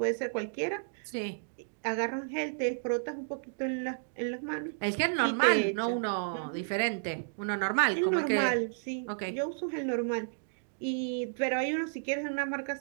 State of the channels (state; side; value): silent; left; digital silence